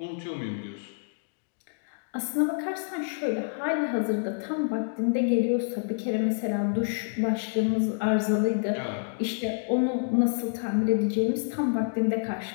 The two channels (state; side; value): silent; right; digital silence